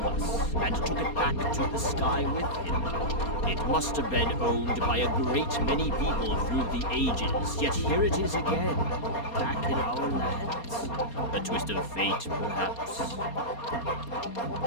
us and took it back to the sky with him. It must have been owned by a great many people through the ages, yet here it is again, back in our lands. A twist of fate, perhaps.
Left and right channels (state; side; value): late; right; 4.3 ms